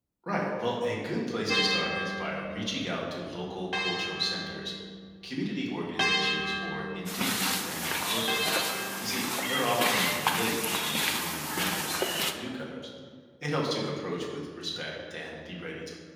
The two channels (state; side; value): identical; both; correlation 1.00